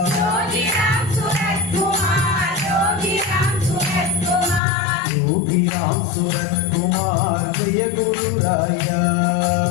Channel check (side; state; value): right; drops out; at 4.6 s